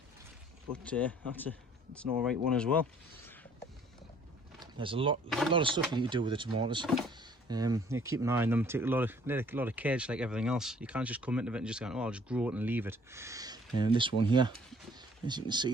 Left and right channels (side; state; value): both; normal; correlation 0.57